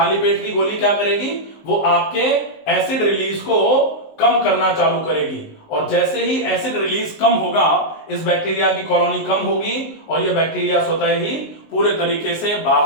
पेट की गोली क्या करेगी, वो आपके एसिड रिलीज को कम करना चालू करेगी, और जैसे ही एसिड रिलीज कम होगा इस बैक्टीरिया की कॉलोनी कम होगी और ये बैक्टीरिया स्वतः ही पूरे तरीके से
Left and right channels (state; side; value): late; right; 19 ms